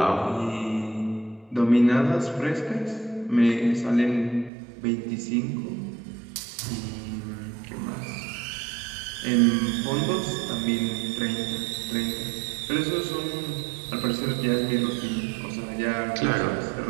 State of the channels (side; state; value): left; drops out; at 4.5 s